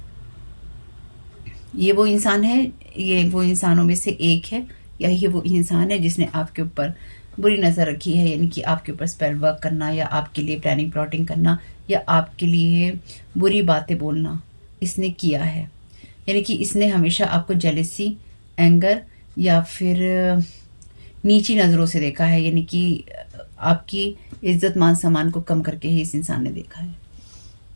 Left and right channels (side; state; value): both; inverted; correlation -1.00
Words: वो इंसान है, ये वो इंसानों में से एक है, या ये वो इंसान है जिसने आपके ऊपर बुरी नज़र रखी है। यानी कि आपके ऊपर स्पेल वर्क करना, या आपके लिए प्लानिंग प्लॉटिंग करना, या आपके लिए बुरी बातें बोलना इसने किया है। यानी कि इसने हमेशा आपको जेलेसी, एंगर या फिर नीची नज़रों से देखा है। यानी कि आपकी इज्जत, मान सम्मान को कम करके ही इस इंसान ने देखा है।